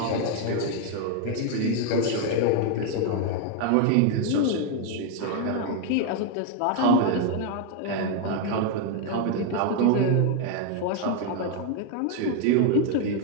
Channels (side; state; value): both; different; correlation 0.01